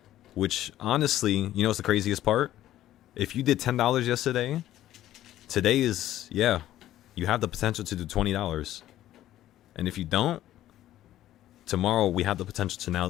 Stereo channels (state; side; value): quieter; right; 13.3 dB